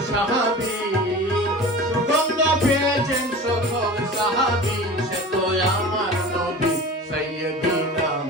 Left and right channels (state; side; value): normal; both; correlation 0.36